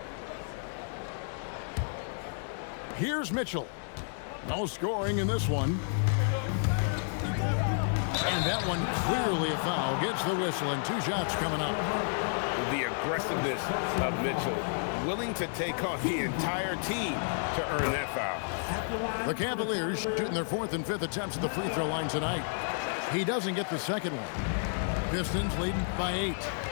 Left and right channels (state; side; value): silent; right; digital silence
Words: Here's Mitchell. No scoring in this one. And that one clearly a foul. Gets the whistle and 2 shots coming up. The aggressiveness of Mitchell, willing to take on the entire team to earn that foul. The Cavaliers shooting their 4th and 5th attempts at the free throw line tonight. He doesn't get the second one. Pistons leading by 8.